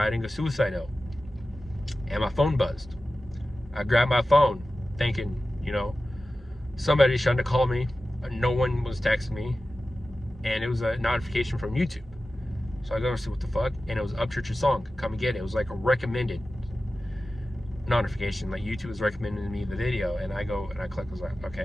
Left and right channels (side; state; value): both; normal; correlation 0.94